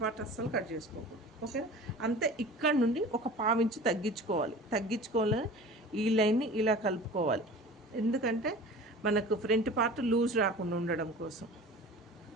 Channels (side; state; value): both; normal; correlation 0.39